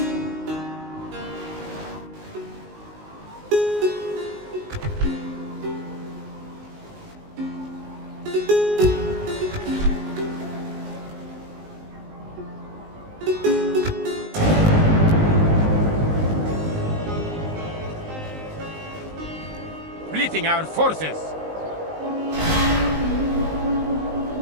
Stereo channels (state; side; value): late; left; 19 ms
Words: Splitting our forces.